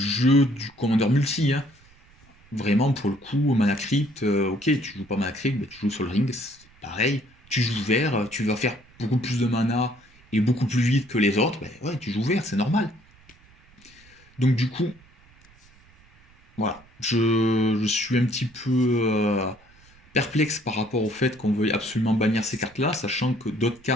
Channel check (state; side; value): noise; right; rumble, 28 dB below the sound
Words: du commandeur multi. Hein. Vraiment, pour le coup, mana crypt, ok, tu joues pas mana crypt, tu joues Sol Ring, c'est pareil. Tu joues vert, tu vas faire beaucoup plus de mana et beaucoup plus vite que les autres, ben ouais, tu joues vert, c'est normal. Donc du coup, voilà, je suis un petit peu perplexe par rapport au fait qu'on veuille absolument bannir ces cartes-là, sachant que d'autres